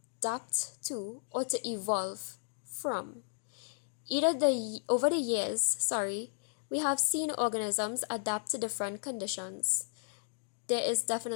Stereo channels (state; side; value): silent; right; digital silence